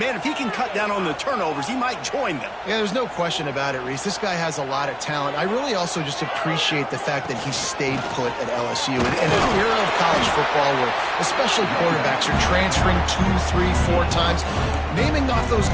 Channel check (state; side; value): identical; both; correlation 1.00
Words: if he can cut down on the turnovers, he might join them. Yeah, there's no question about it, Reese. This guy has a lot of talent. I really also just appreciate the fact that he stayed put at LSU. In an era of college football where especially quarterbacks are transferring 2, 3, 4 times, naming off those